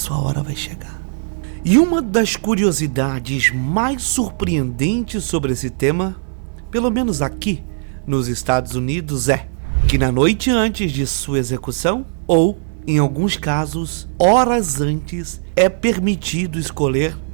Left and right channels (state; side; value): silent; left; 67 dB below the other